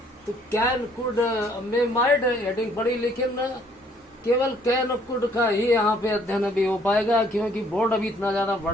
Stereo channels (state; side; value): normal; both; correlation 0.63